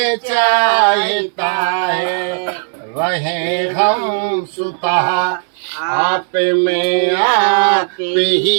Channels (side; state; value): left; silent; digital silence